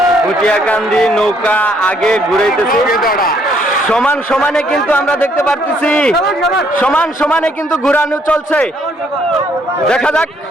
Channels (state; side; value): normal; both; correlation 0.68